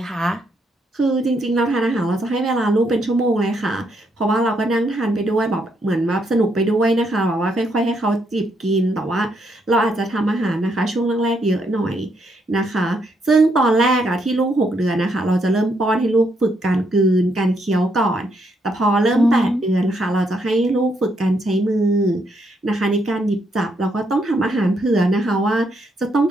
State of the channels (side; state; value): both; normal; correlation 0.76